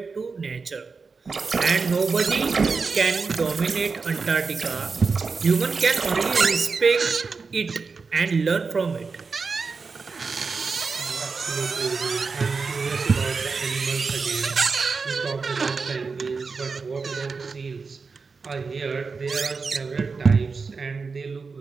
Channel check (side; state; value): left; quieter; 4.7 dB